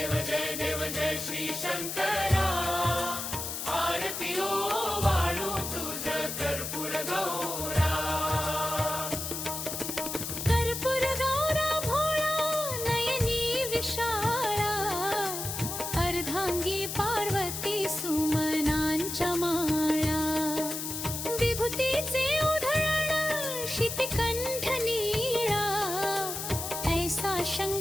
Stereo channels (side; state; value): left; noise; hiss, 5 dB below the sound